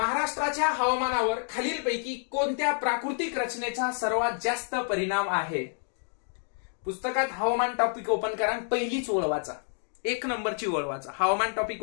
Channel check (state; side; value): silent; right; 56 dB below the other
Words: हवामानावर खालीलपैकी कोणत्या प्राकृतिक रचनेचा सर्वात जास्त परिणाम आहे? पुस्तकात हवामान टॉपिक ओपन करा, पहिलीच ओळ वाचा, 1 नंबरची ओळ वाचा. हवामान टॉपिक